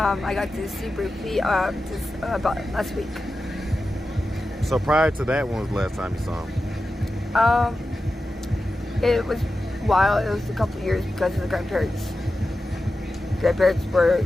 got to see briefly just about last week. So prior to that, when was the last time you saw him? It was a while. It was a couple of years because of the grandparents. Grandparents were,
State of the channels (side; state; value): both; normal; correlation 0.92